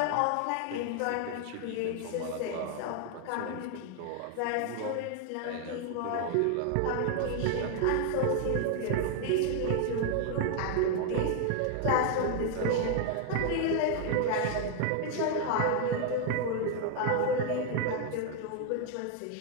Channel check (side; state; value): both; different; correlation 0.00